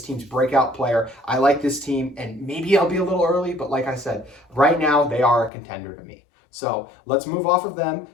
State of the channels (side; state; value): right; drops out; at 5.5 s